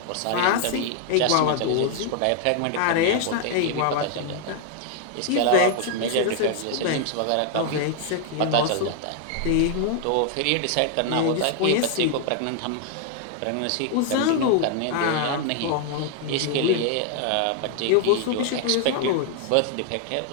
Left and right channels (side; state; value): both; different; correlation 0.00